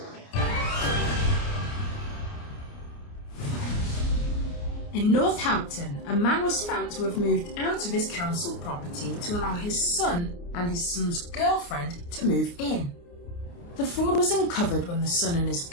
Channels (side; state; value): right; late; 29 ms